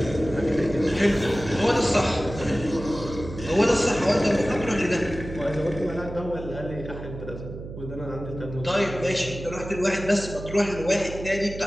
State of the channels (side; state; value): right; noise; hum, 11 dB below the sound